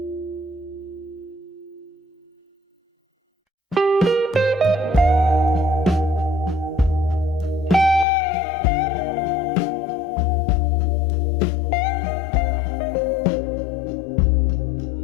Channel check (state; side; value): drops out; right; at 8.1 s